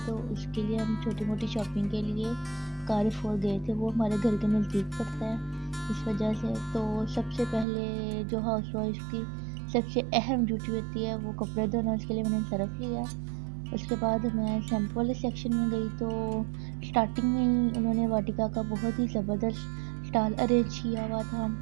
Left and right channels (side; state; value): left; drops out; at 7.7 s